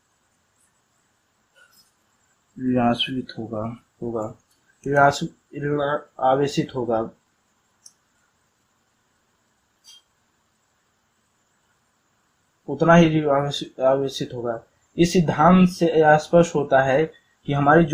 ऋणावेशित होगा ऋणावेशित होगा। उतना ही आवेशित होगा। इस सिद्धांत से यह स्पष्ट होता है कि हमारी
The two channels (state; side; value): identical; both; correlation 1.00